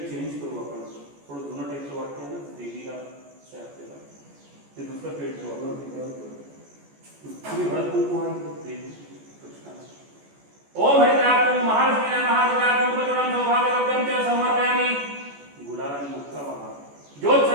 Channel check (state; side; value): late; left; 14 ms